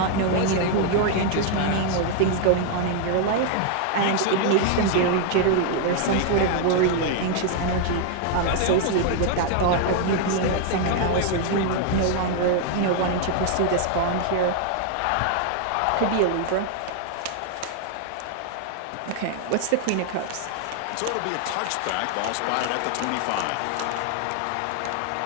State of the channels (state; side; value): different; both; correlation 0.00